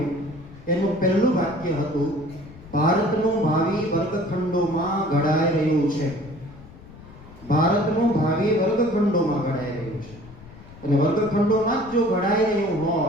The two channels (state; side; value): noise; left; rumble, 19 dB below the sound